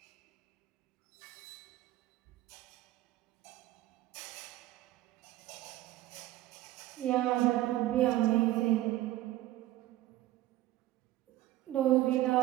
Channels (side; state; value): left; quieter; 15.6 dB